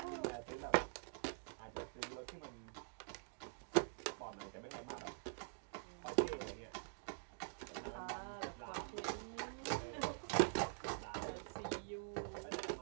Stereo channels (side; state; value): left; silent; digital silence